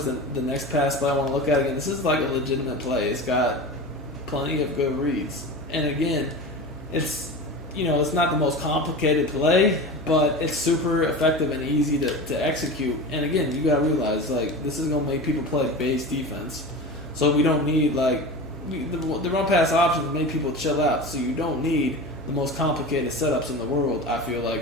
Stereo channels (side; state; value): both; normal; correlation 0.29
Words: the next pass play I want to look at again. This is like a legitimate play. It's got plenty of good reads. And again, it's, you know, it's not the most complicated play, but it's super effective and easy to execute. And again, you got to realize, like, this is going to make people play base defense. So we don't need, like, the run pass options make people chill out. So you don't need the most complicated setups in the world, I feel